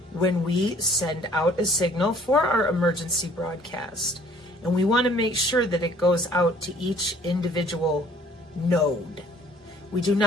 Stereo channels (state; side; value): normal; both; correlation 0.57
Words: when we send out a signal for our emergency broadcast. And we want to make sure that it goes out to each individual node. We do